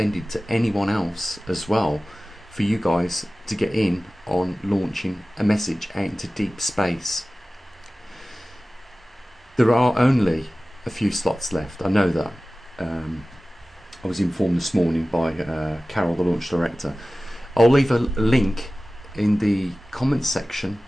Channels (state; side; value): normal; both; correlation 0.97